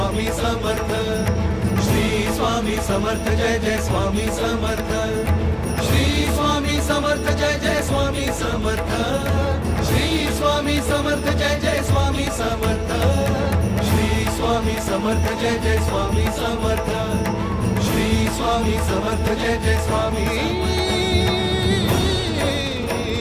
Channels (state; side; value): identical; both; correlation 1.00